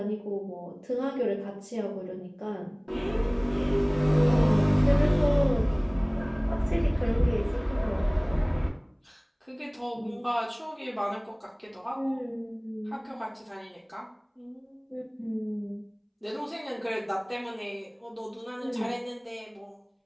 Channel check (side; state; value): both; identical; correlation 1.00